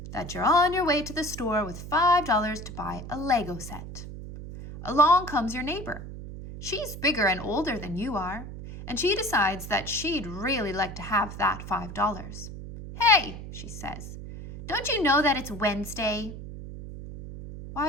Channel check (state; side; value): noise; right; hum, 11 dB below the sound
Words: that you're on your way to the store with $5 to buy a Lego set. Along comes your neighbor. She's bigger and older than you are, and she decides that she'd really like to have that $5. "Hey," she says, "don't you know that it's Wednesday?"